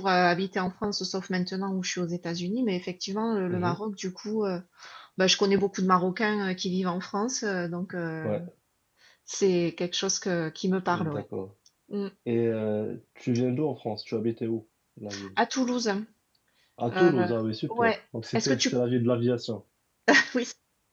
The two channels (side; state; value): both; identical; correlation 1.00